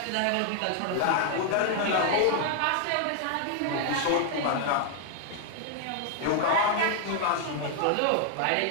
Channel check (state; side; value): different; both; correlation 0.00